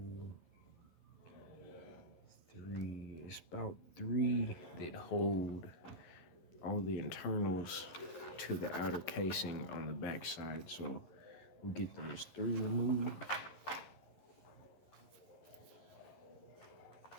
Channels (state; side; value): late; right; 11 ms